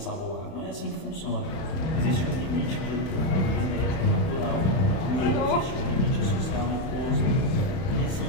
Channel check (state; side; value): late; right; 31 ms